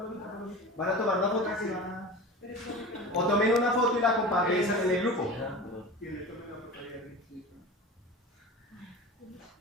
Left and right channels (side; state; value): both; normal; correlation 0.32